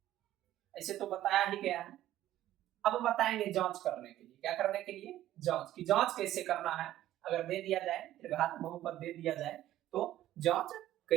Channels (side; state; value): left; quieter; 13.5 dB